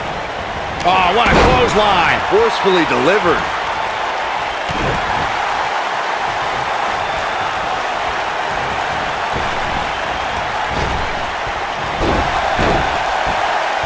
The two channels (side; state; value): both; identical; correlation 1.00